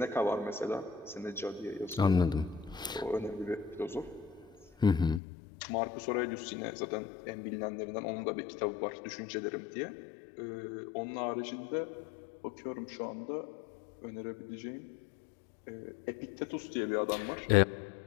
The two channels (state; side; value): drops out; right; at 5.2 s